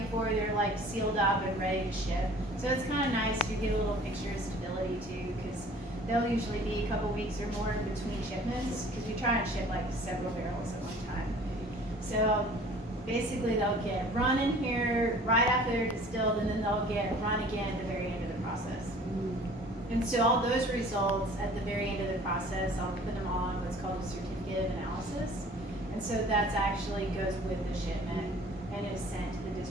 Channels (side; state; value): both; normal; correlation 0.49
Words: before they're like sealed up and ready to ship. So it's kind of nice. You get a little picture of stability too, because they'll usually be a couple weeks or more in between shipments, because we try and ship like several barrels at one time. So basically they'll get run in here right after they're distilled, and then they'll get run again at the very end of the process. And so all those results at the very end of the process, I'll put them on what's called a certificate of analysis. And so that's actually goes with the shipment and is sent to the